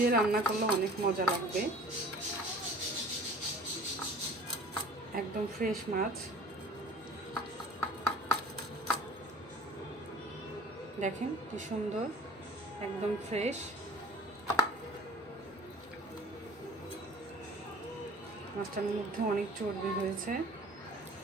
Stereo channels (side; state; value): both; normal; correlation 0.46